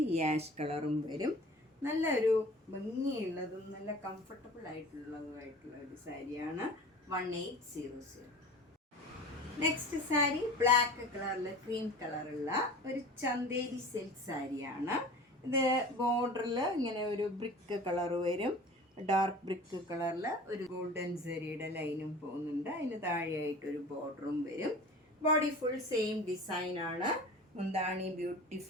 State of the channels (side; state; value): both; normal; correlation 0.40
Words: ഈ ആഷ് കളറും വരും. നല്ലൊരു ഭംഗിയുള്ളതും നല്ല കംഫർട്ടബിൾ ആയിട്ടുള്ളതുമായിട്ടുള്ള ഒരു സാരിയാണ്. 1800. നെക്സ്റ്റ് സാരി ബ്ലാക്ക് കളറിൽ ക്രീം കളറുള്ള ഒരു ചന്തേരി സിൽക്ക് സാരിയാണ്. ഇത് ബോർഡറിൽ ഇങ്ങനെ ഒരു ബ്രിക്ക് കളർ വരും. ഡാർക്ക് ബ്രിക്ക് കളറിൽ ഒരു ഗോൾഡൻ സെറിയുടെ ലൈനും പോകുന്നുണ്ട്. അതിന് താഴെയായിട്ടൊരു ബോർഡറും വരും. ബോഡി ഫുൾ സെയിം ഡിസൈനാണ്. മുന്താണി